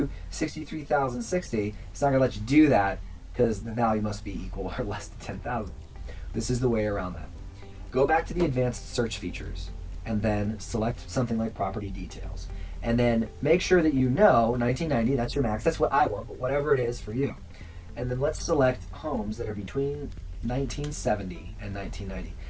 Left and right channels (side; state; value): both; identical; correlation 1.00